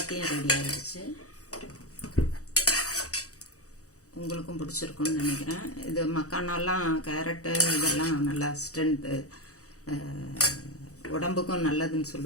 ரெடி ஆயிடுச்சு. உங்களுக்கும் பிடிச்சிருக்குன்னு நினைக்கிறேன். இது மக்கானாலாம் கேரட்டு இதெல்லாம் நல்லா ஸ்ட்ரென்த்து, உடம்புக்கும் நல்லதுன்னு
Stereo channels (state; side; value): late; right; 0.66 ms